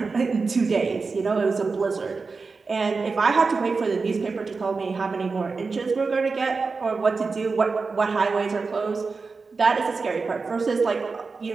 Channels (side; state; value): left; quieter; 4.4 dB